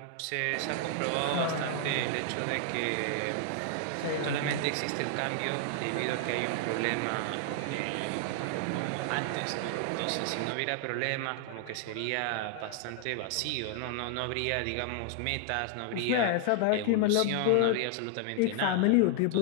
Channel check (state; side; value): different; both; correlation 0.00